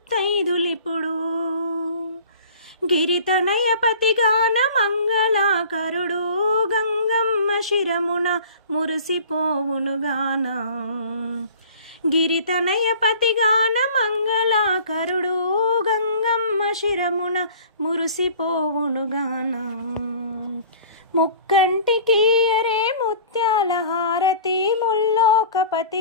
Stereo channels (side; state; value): both; inverted; correlation -0.45